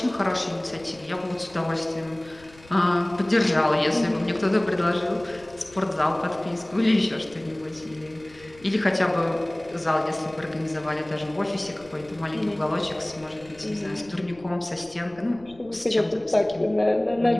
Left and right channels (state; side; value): noise; left; rumble, 25 dB below the sound